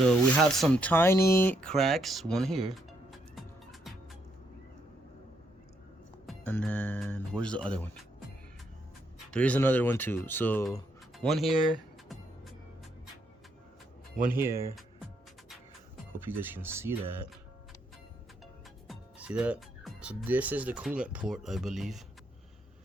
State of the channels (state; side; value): normal; both; correlation 0.75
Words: we have some tiny cracks, one here. And then where's the other one? There is another one too. So one here, one here. Hope you guys can see that. See that? So this is the coolant port, I believe.